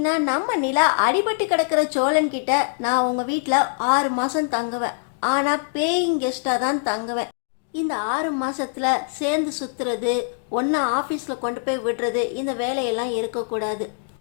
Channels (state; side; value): silent; right; digital silence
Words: நம்ம நிலா அடிபட்டு கிடக்கிற சோழன்கிட்ட நான் உங்கள் வீட்டில் 6 மாதம் தங்குவேன், ஆனால் பேயிங் கெஸ்ட்டாக தான் தங்குவேன். இந்த 6 மாதத்தில் சேர்ந்து சுற்றுறது, ஒன்றா ஆஃபீஸில் கொண்டு போய் விடுறது, இந்த வேலையெல்லாம் இருக்கக்கூடாது.